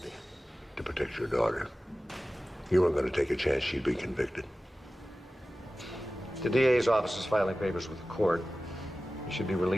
To protect your daughter. You weren't going to take a chance she'd be convicted. The DA's office is filing papers with the court. You should be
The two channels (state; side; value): normal; both; correlation 0.96